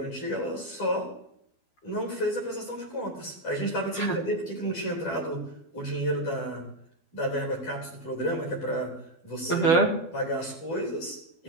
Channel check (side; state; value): right; late; 12 ms